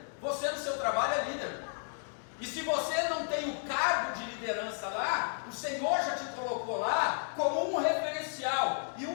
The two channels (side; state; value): right; silent; digital silence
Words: Você no seu trabalho é líder. E se você não tem o cargo de liderança lá, o Senhor já te colocou lá como um referencial. E